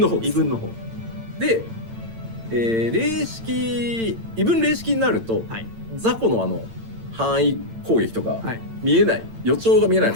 方です。で、霊式異文霊式になると、雑魚の範囲攻撃とか見えない、予兆が見えないの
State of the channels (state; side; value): late; left; 8.9 ms